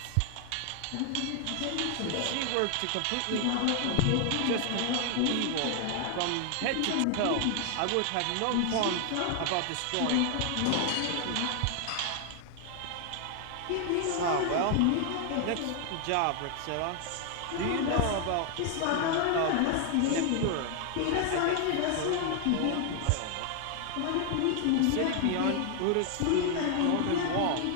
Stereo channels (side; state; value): both; different; correlation 0.00